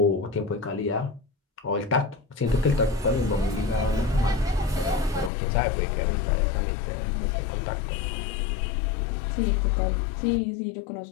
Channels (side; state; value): right; drops out; at 5.3 s